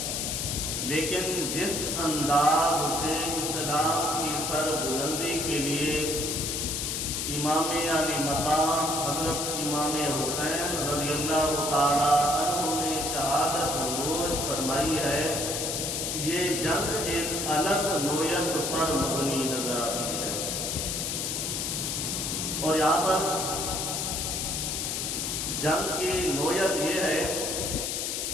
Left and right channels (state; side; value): noise; left; hiss, 1 dB below the sound